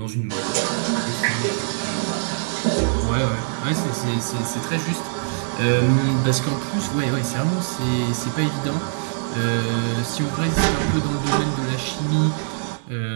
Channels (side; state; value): left; silent; digital silence